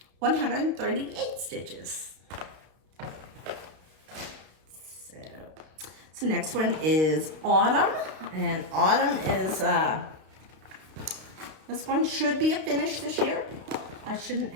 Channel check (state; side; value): late; left; 32 ms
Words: 138 stitches. So next one is Autumn. And Autumn is, this one should be a finish this year. I shouldn't